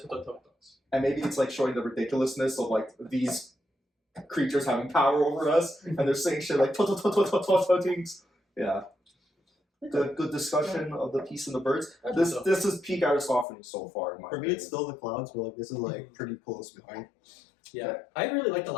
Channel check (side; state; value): right; drops out; at 13.5 s